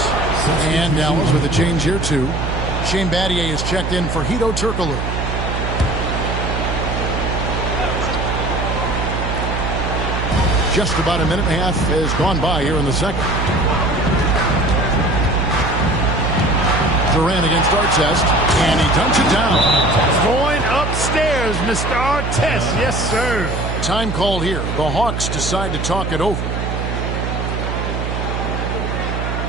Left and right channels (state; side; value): noise; right; hum, 3 dB below the sound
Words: And Dallas with a change here too. Shane Battier is checked in for Hedo Turkoglu. Just about a minute and a half has gone by here in the second. Durant against Artest, and he dunks it down. Going upstairs, Mr. Artest. Yes, sir. Time called here. The Hawks decide to talk it over.